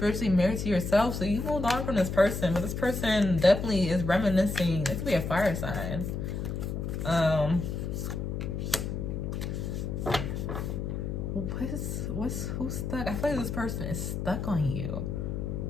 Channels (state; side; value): noise; left; hum, 3 dB below the sound